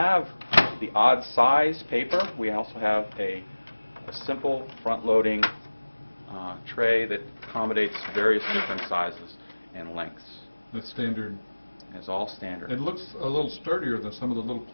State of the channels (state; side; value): inverted; both; correlation -1.00